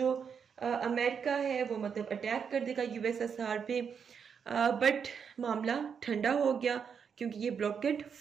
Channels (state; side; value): quieter; left; 6.8 dB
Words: अमेरिका है वो मतलब अटैक कर देगा यूएसएसआर पे, बट मामला ठंडा हो गया क्योंकि ये ब्लॉकेट